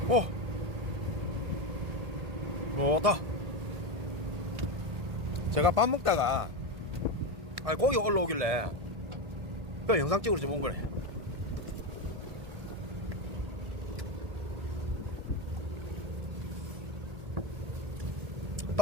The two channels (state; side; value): late; left; 1.7 ms